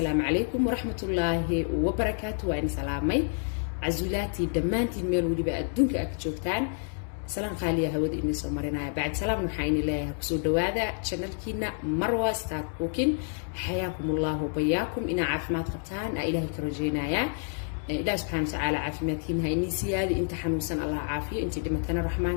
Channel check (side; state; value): right; silent; 56 dB below the other